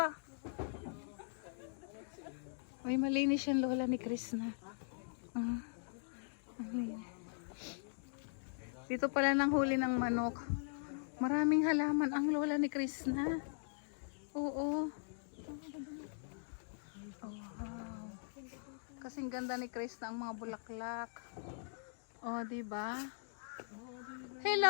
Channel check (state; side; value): silent; right; digital silence